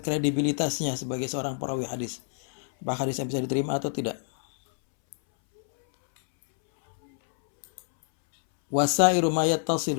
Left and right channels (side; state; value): right; silent; 60 dB below the other